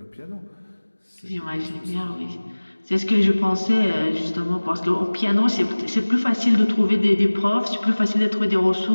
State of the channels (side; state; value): both; inverted; correlation -1.00